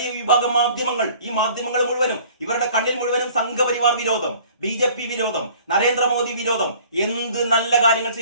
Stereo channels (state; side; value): inverted; both; correlation -0.51